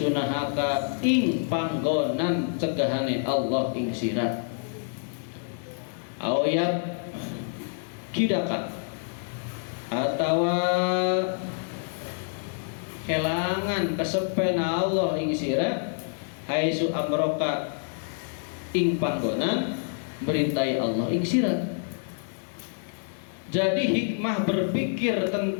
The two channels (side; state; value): right; silent; digital silence